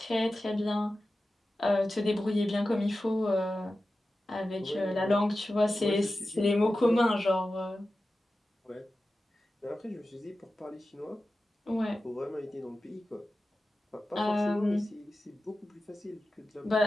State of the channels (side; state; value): both; normal; correlation 0.94